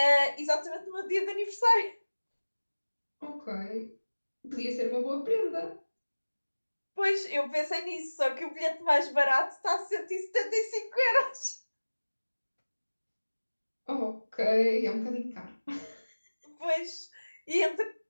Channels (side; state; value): both; inverted; correlation -1.00